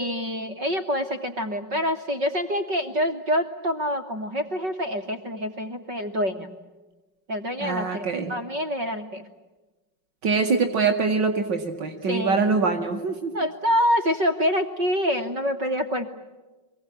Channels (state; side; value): late; left; 5.4 ms